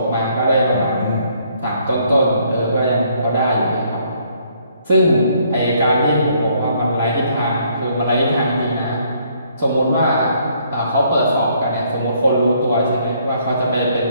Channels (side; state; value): both; inverted; correlation -0.67